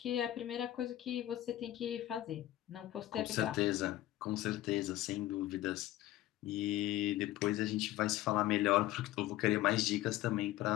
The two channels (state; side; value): quieter; right; 15.0 dB